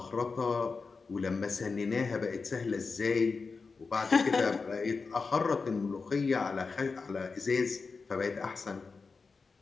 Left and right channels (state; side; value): quieter; right; 4.5 dB